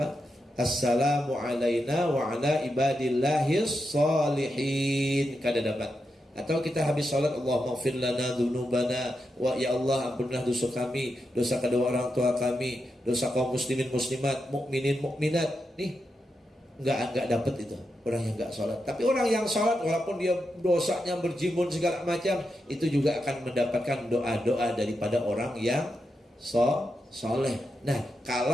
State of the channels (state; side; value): normal; both; correlation 0.86